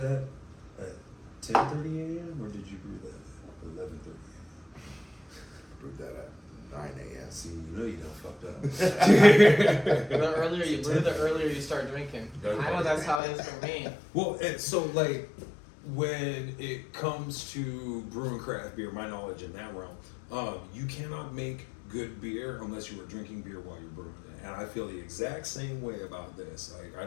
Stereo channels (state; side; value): drops out; right; at 13.2 s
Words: at 10:30 a.m. or did you brew that at 11:30 a.m.? Brewed that at 9 a.m. See, you know you done fucked up. The earlier you brew, the earlier you start drinking. I know that's how it is for me. Well, and so like when it comes to brewing craft beer, my knowledge in that realm, you cannot make good beer unless you are drinking beer while you're brewing it. And I feel the exact same way about this. Like, I